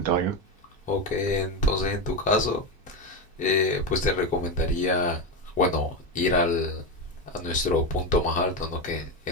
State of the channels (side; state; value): both; normal; correlation 0.14